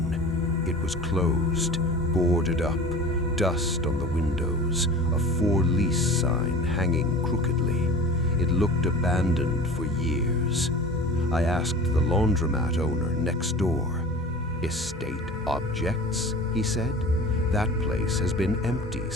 It was closed, boarded up, dust on the windows, a for lease sign hanging crookedly. It looked abandoned for years. I asked the laundromat owner next door. "Estate objects?" he said. "That place has been empty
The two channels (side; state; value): both; normal; correlation 0.38